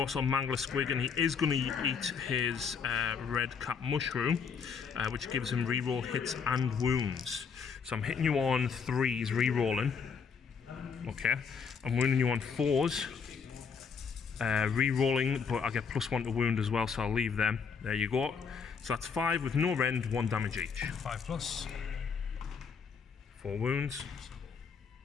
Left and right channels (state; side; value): quieter; right; 6.1 dB